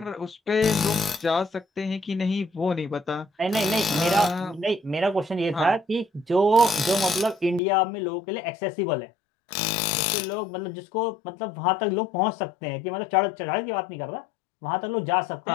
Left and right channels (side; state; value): right; drops out; at 7.6 s